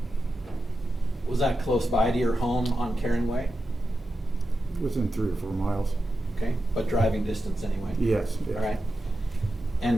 was that close by to your home on Karen Way? within 3 or 4 miles. Okay, but driving distance anyway? Yes. Yes. All right.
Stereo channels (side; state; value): both; normal; correlation 0.90